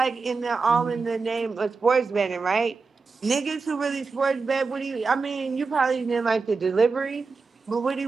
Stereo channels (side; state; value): left; quieter; 4.5 dB